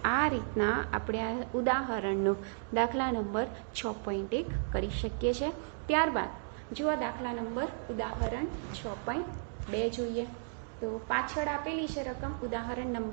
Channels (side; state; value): left; silent; digital silence